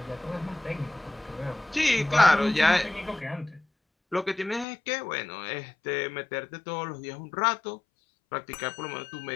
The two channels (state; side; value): drops out; right; at 4.7 s